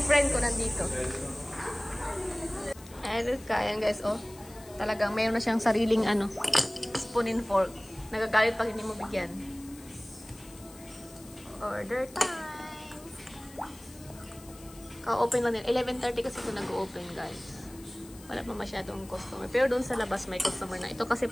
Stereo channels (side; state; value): left; noise; hiss, 21 dB below the sound